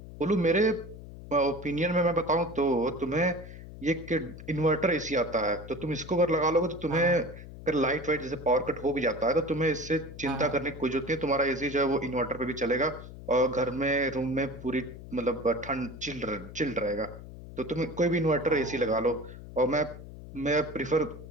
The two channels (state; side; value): noise; left; hum, 14 dB below the sound